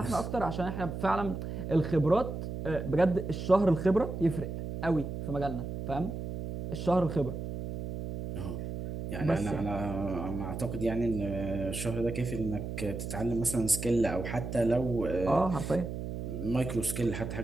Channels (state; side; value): noise; right; hum, 6 dB below the sound